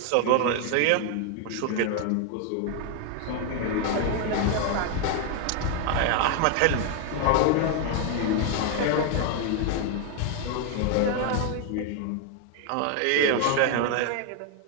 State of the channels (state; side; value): different; both; correlation 0.01